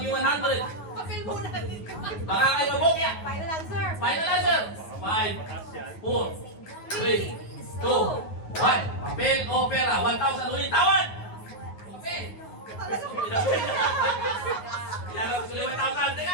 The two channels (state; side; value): late; right; 9.4 ms